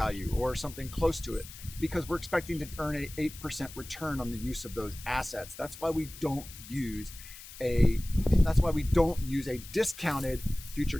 or something close to it, because we're expecting to earn an 8% return on the use of those assets. That's why we don't use a discounted future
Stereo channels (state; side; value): noise; left; hiss, 15 dB below the sound